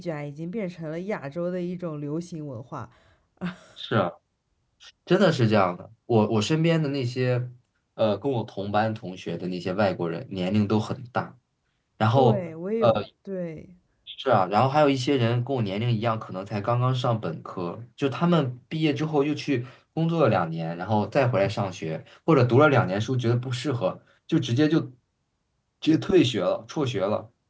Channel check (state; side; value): identical; both; correlation 1.00